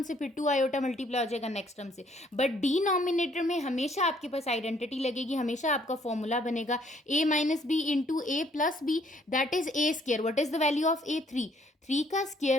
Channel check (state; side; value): normal; both; correlation 0.64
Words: से, फिर 2 आयोटा मल्टीप्लाई हो जाएगा नेक्स्ट टर्म से, बट डिनोमिनेटर में हमेशा आपके पास आइडेंटिटी लगेगी, हमेशा आपका फॉर्मूला बनेगा a minus B into A plus B, that is A square. What is the value of A? 3. 3 का